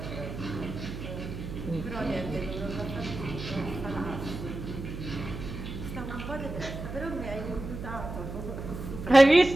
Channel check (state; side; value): noise; right; hum, 8 dB below the sound